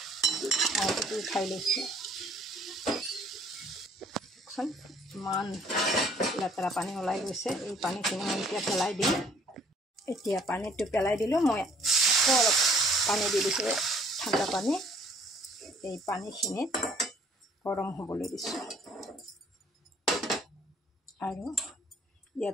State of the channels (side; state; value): both; normal; correlation 0.58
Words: মাংসটো উঠাই লৈছোঁ। ইমান লেতেৰা পানী ওলাই গৈছে, এই পানীখিনি মই এতিয়া পেলাই দিম। এতিয়া পানীটো পেলাই দিলোঁ, মই আকৌ অলপ পানী দি দিছোঁ, ঠাণ্ডা পানী। এই পানীখিনিত গৰম হ'বলৈ দিছোঁ আৰু